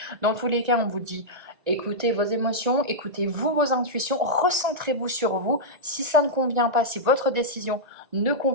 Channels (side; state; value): left; late; 1.8 ms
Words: Dans tous les cas, on vous dit écoutez vos émotions, écoutez-vous vos intuitions, recentrez-vous sur vous. Si ça ne convient pas, si votre décision ne